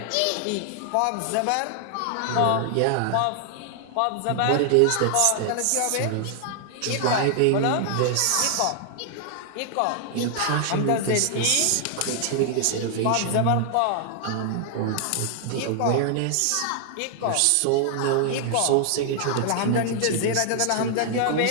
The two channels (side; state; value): both; different; correlation 0.00